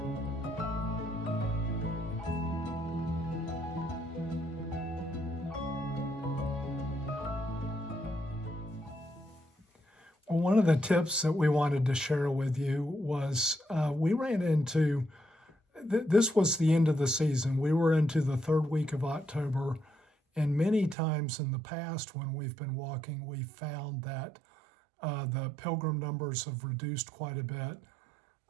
Well, one of the tips that we wanted to share with you was we ran into, this was the end of the season. We were into the third week of October, and many times in the past when we've been walking, we found that the pilgrim numbers have reduced quite a bit.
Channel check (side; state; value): left; drops out; at 21.0 s